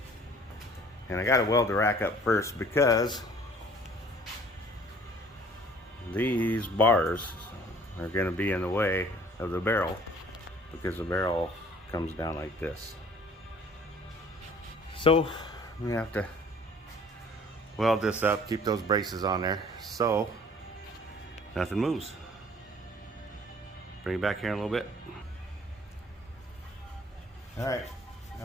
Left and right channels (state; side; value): normal; both; correlation 0.53